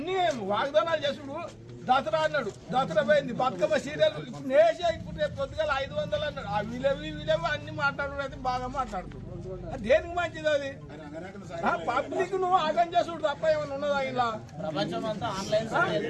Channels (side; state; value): both; identical; correlation 1.00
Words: వాగ్దానాలు చేసుడు. దసరా అన్నాడు, దసరా పోయింది. బతుకమ్మ సీరియల్ నేసే ఇప్పుడు రేపు పొద్దుగాల 500 అన్నాడు. ఆ వీలేవి అన్ని మాట్లాడు అయితే బాగా మాట్లాడుతున్నాడు. దేనికి మంచిది అది? పబ్లిక్ నువ్వు ఆగం చేసుడు తప్ప ఏమైనా ఉన్నదా ఇలా?